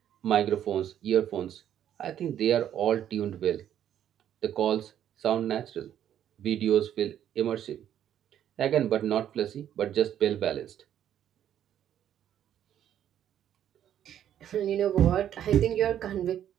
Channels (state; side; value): quieter; left; 10.4 dB